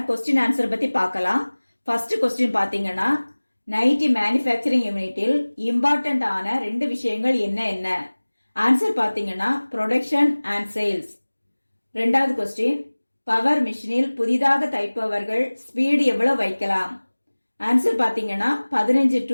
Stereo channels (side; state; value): both; inverted; correlation -1.00